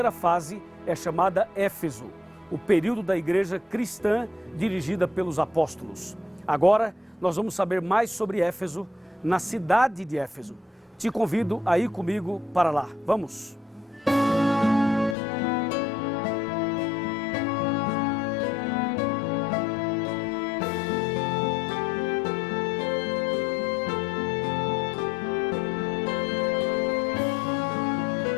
fase é chamada Éfeso, o período da igreja cristã dirigida pelos apóstolos. Agora nós vamos saber mais sobre Éfeso, na cidade de Éfeso. Te convido a ir comigo para lá. Vamos!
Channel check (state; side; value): drops out; right; at 15.2 s